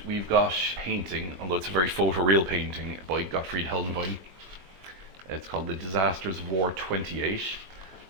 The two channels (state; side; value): late; left; 21 ms